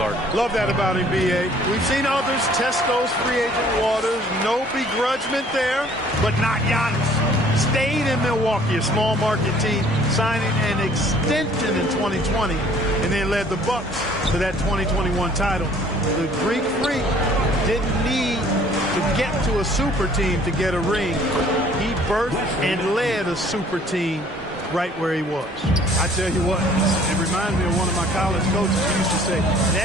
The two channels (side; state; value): both; normal; correlation 0.56